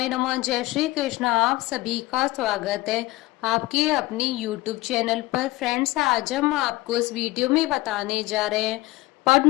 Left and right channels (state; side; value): quieter; right; 19.5 dB